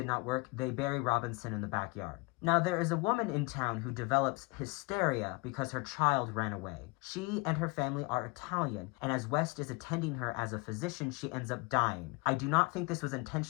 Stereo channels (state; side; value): quieter; right; 26.8 dB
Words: not work, they bury Robinson in the backyard. Now, there is a woman in town who develops hysteria because her child ran away. She and her family are Italian, and as West is attending her as a physician, she ends up dying. I do not think this was